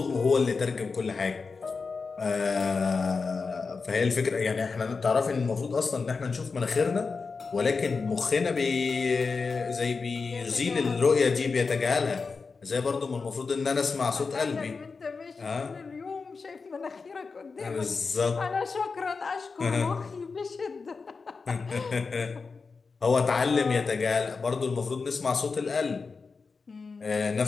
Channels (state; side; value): quieter; right; 4.6 dB